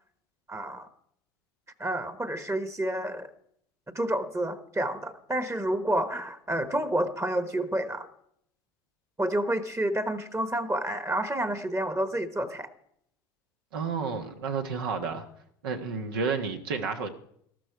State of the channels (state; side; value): normal; both; correlation 0.67